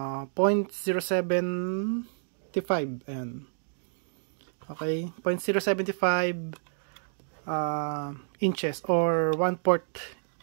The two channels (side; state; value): left; silent; digital silence